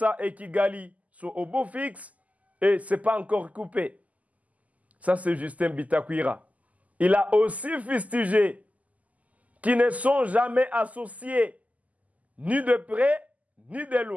et Kigali sont au beau fixe et ce n'est pas encore coupé. Ça, c'est Justin Bitakwira. Il a aussi fustigé qui ne sont jamais associés, ni de près, ni de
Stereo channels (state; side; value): late; left; 0.074 ms